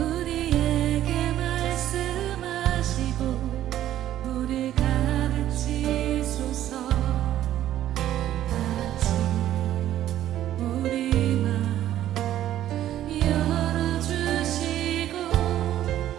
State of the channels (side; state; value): left; quieter; 12.4 dB